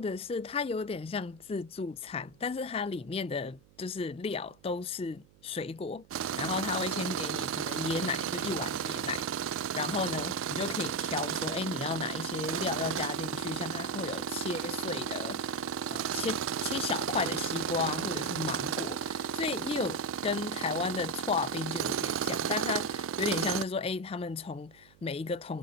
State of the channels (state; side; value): noise; right; hum, 28 dB below the sound